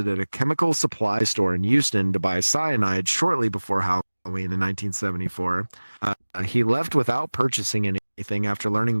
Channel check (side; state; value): both; inverted; correlation -1.00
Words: a chemical supply store in Houston to buy cyanide shortly before Halloween in 1974, he left without purchasing anything after learning